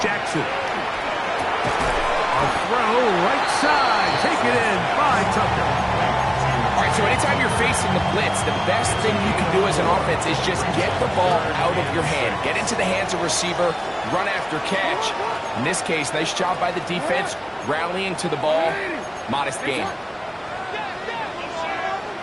Jackson. A throw, right side. Take it in by Tucker. All right, so anytime you're facing the blitz, the best thing you can do as an offense is just get the ball out of your hand. Get into the hands of receiver, run after catch. In this case, nice job by the defense, rallying to the ball. Modest gain.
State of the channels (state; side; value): identical; both; correlation 1.00